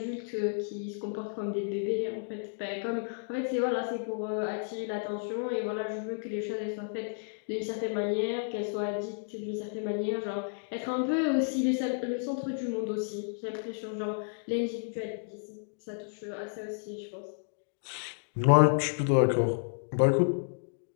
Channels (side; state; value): right; silent; digital silence